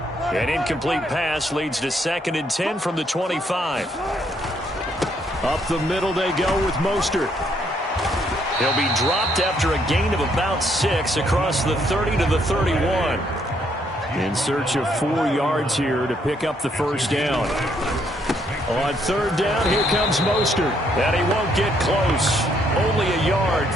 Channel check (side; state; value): both; normal; correlation 0.71